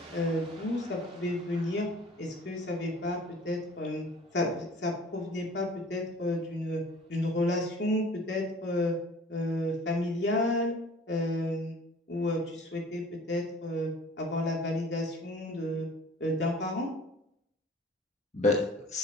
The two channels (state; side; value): normal; both; correlation 0.48